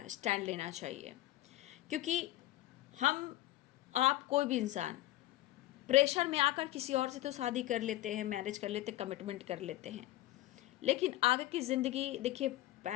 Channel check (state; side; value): quieter; right; 16.2 dB